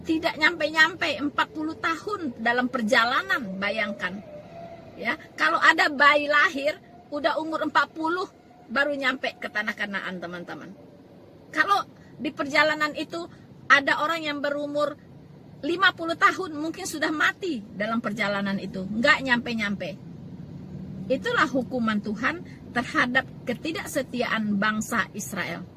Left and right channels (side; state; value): both; identical; correlation 1.00